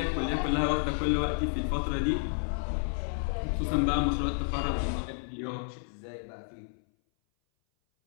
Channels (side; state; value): right; silent; 57 dB below the other